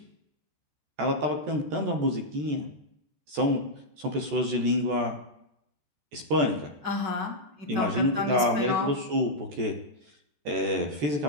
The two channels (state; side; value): late; left; 14 ms